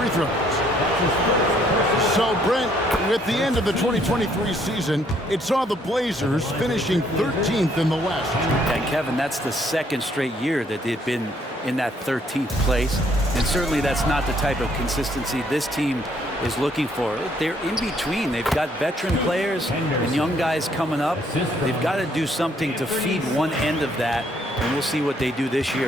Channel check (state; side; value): normal; both; correlation 0.67